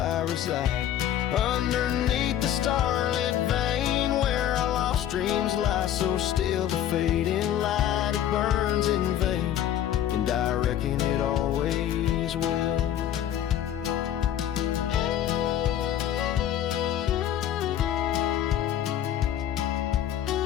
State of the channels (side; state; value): right; quieter; 10.9 dB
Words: reside, underneath the starlit vein where our lost dreams lie so still. The fading light, it burns in vain, and I reckon it always will.